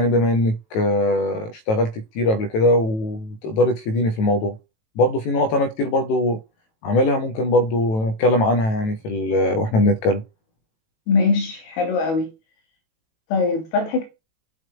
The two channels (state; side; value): late; right; 18 ms